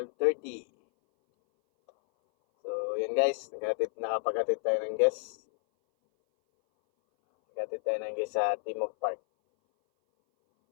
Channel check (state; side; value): silent; right; 58 dB below the other